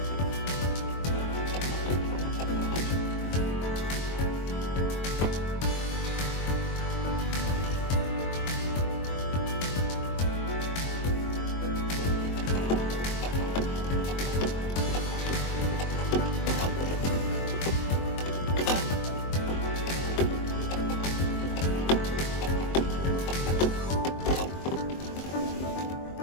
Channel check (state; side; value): late; right; 23 ms